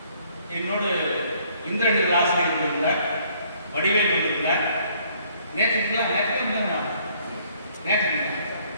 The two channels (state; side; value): inverted; both; correlation -0.63